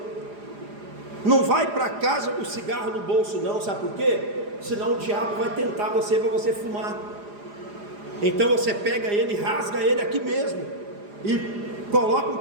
Não vai para casa com o cigarro no bolso não, sabe por quê? Senão o diabo vai tentar você para você fumar. Então você pega ele, rasga ele aqui mesmo e coloca um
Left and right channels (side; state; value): left; late; 4.9 ms